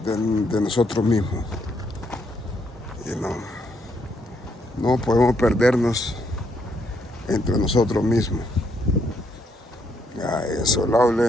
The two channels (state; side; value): normal; both; correlation 0.74